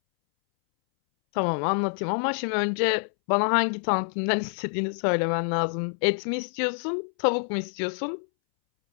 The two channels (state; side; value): silent; right; 61 dB below the other